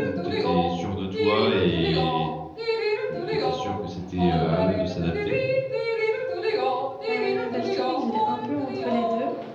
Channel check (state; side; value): identical; both; correlation 1.00